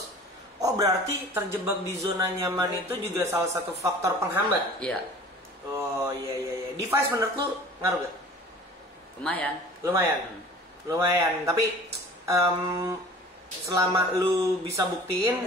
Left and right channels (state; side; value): normal; both; correlation 0.44